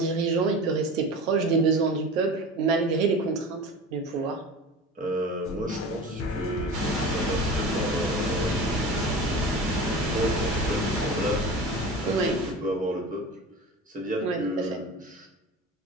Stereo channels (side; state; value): both; normal; correlation 0.34